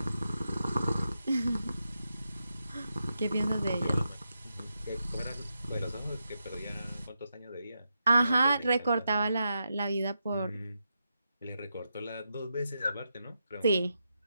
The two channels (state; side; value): inverted; both; correlation -0.86